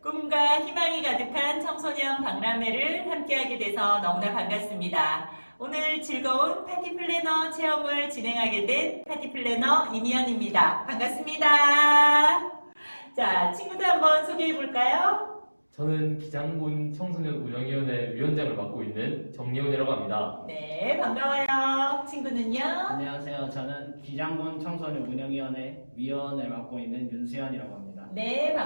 꿈과 희망이 가득한 청소년 박람회를 함께하게 돼서 너무나 반갑습니다. 오늘 즐거운 파티 플래너 체험을 진행하게 된 파티 플래너 이미연입니다. 반갑습니다. 자, 친구들 한번 소개해 볼까요? 저는 기장군 청소년 운영위원회 위원장을 맡고 있는 정예훈이라고 합니다. 네, 반가워요. 친구는요? 안녕하세요. 저는 기장군 청소년 운영위원회 위원을 맡고 있는 윤수현이라고 합니다. 네,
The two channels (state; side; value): inverted; both; correlation -1.00